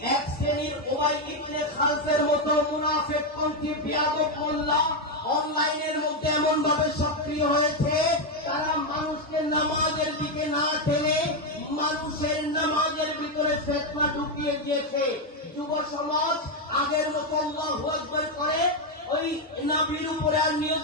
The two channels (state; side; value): normal; both; correlation 0.05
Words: এক শ্রেণীর উমাই ইবনে খালফের মতো মুনাফিকপন্থী বিয়াদব মোল্লা অনলাইনের মধ্যে এমন ভাবে সক্রিয় হয়েছে, তারা মানুষকে নামাজের দিকে না টেনে মানুষের নামাজের ভিতরে ফিতনা ঢুকিয়ে দিয়েছে। যুব সমাজ আগের মতো আল্লাহু আকবার করে ওই নবীর উপরে আর নিয়ত